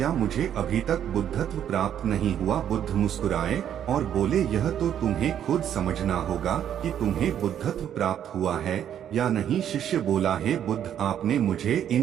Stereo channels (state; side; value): quieter; left; 9.8 dB